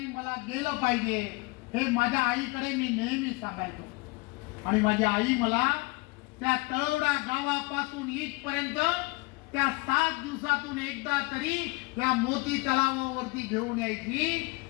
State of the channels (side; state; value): right; quieter; 25.7 dB